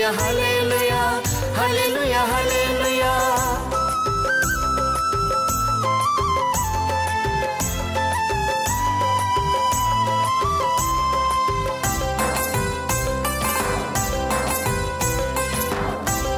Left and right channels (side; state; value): both; identical; correlation 1.00